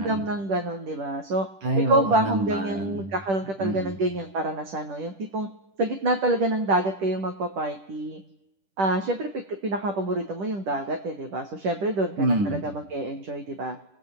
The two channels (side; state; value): left; late; 10 ms